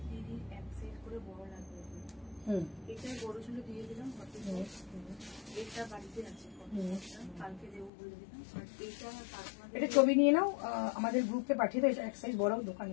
এটা বড় ছিল দিয়ে দিলাম, এটা বাড়িতে আছে, কালকে দেবো বলে দিলাম। আর এটা ছবি নিয়ে নাও, আমাদের গ্রুপে পাঠিয়ে দাও, এটা এক সাইজ বড়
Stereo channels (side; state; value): right; drops out; at 7.9 s